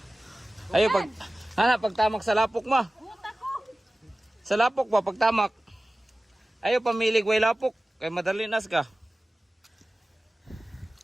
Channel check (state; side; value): normal; both; correlation 0.97